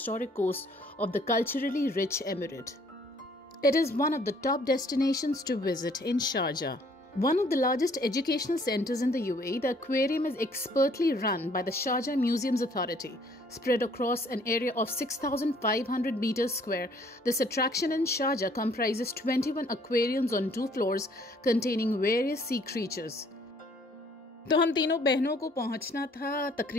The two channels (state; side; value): normal; both; correlation 0.61